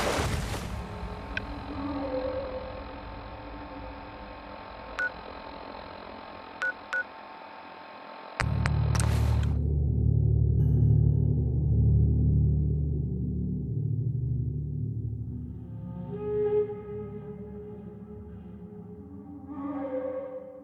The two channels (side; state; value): both; identical; correlation 1.00